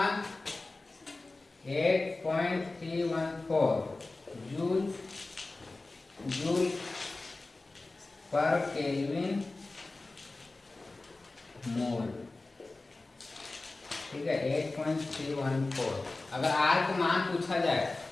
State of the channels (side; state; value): right; quieter; 3.2 dB